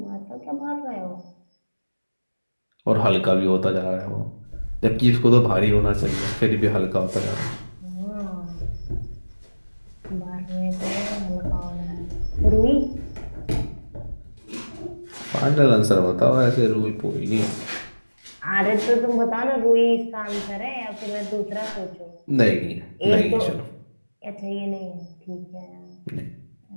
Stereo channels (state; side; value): inverted; both; correlation -1.00